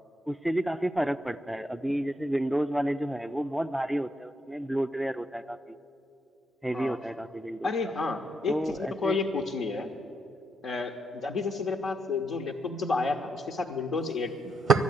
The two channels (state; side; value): normal; both; correlation 0.79